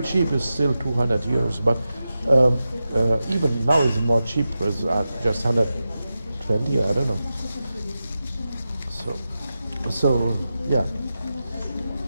cheap is still €200, but even now it's more cheap. It's just 120, I don't know. So yeah.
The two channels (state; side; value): inverted; both; correlation -0.92